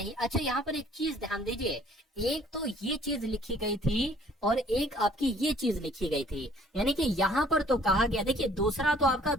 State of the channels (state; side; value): normal; both; correlation 0.58